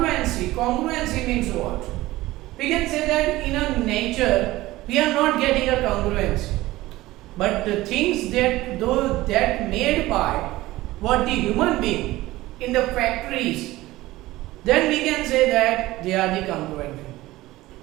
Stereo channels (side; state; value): left; quieter; 17.8 dB